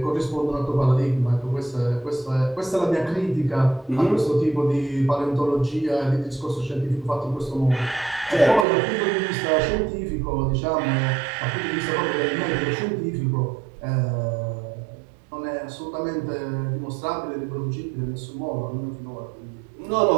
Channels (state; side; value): drops out; left; at 8.7 s